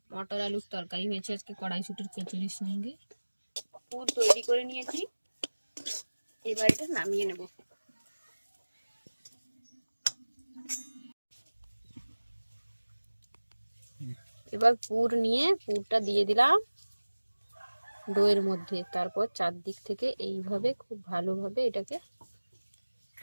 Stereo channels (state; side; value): inverted; both; correlation -1.00